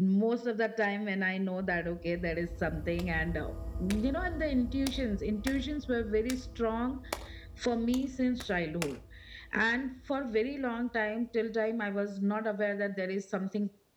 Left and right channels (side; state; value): both; identical; correlation 1.00